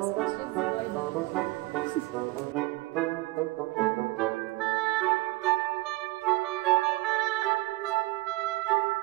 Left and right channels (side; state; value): left; quieter; 20.8 dB